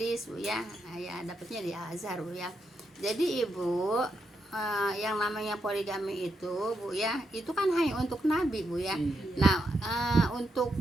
Bu ya. Ya dapatnya di Al-Azhar Bu ya. Jadi Ibu, yang namanya poligami itu Bu ya, itu kan hanya untuk Nabi Bu ya. Nah untuk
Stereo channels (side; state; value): both; normal; correlation 0.82